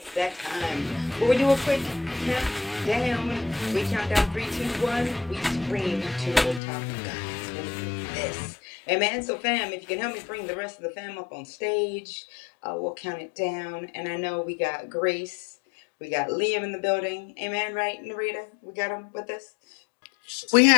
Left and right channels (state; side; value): drops out; right; at 6.6 s